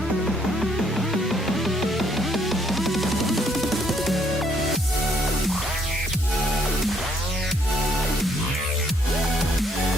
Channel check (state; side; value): normal; both; correlation 0.68